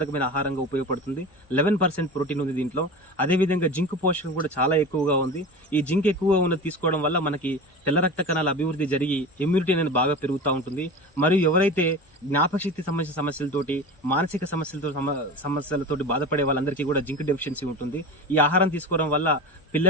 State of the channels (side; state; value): both; normal; correlation 0.30